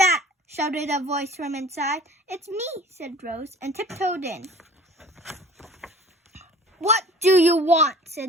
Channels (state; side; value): normal; both; correlation 0.46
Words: shouted a voice from inside. "It's me," said Rose, and tiptoed in. "What do you want?" said